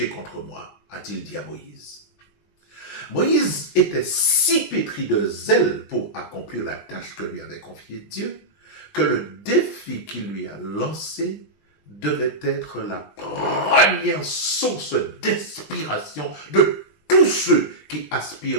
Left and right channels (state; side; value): late; right; 20 ms